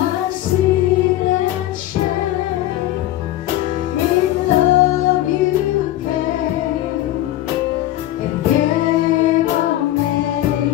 sin and shame. In love you came and gave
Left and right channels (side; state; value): right; quieter; 14.5 dB